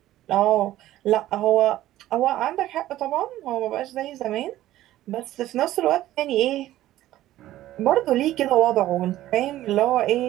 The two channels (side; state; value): left; quieter; 14.5 dB